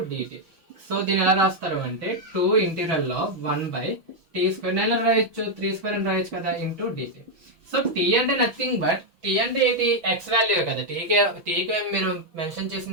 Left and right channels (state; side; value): late; left; 6.1 ms